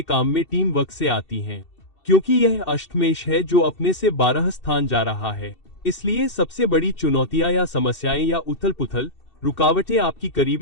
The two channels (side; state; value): right; late; 2.7 ms